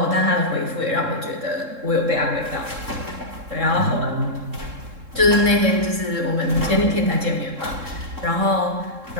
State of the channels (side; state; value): left; late; 3.7 ms